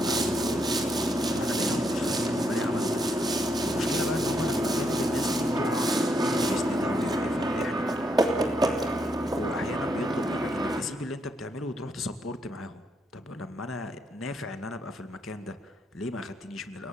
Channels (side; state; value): both; normal; correlation 0.77